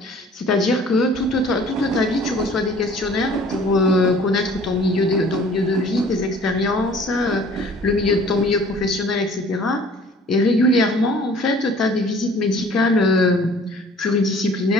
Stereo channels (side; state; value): both; normal; correlation 0.52